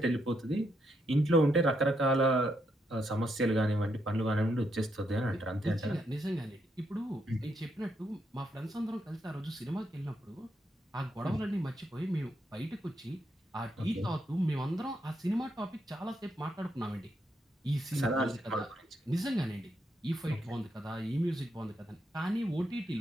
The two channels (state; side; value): normal; both; correlation 0.79